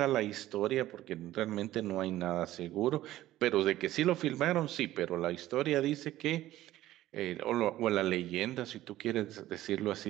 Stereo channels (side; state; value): left; quieter; 14.8 dB